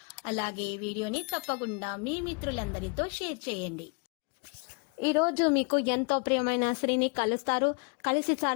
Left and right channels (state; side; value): quieter; right; 34.6 dB